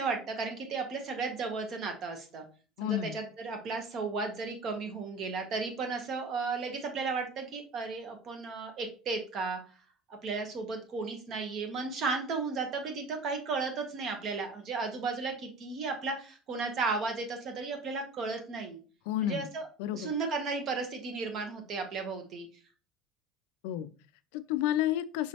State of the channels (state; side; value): normal; both; correlation 0.35